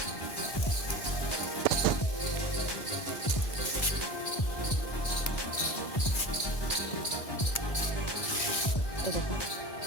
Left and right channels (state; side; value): late; right; 1.2 ms